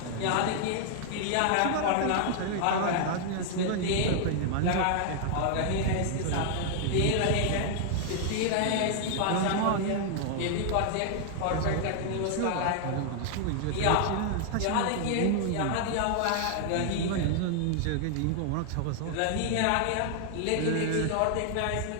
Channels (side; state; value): both; different; correlation 0.00